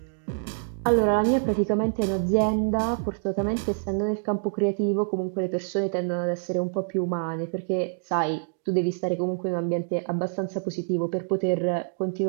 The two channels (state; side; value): silent; left; digital silence